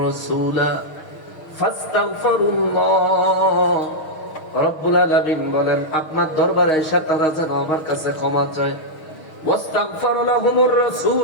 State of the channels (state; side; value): late; right; 6.4 ms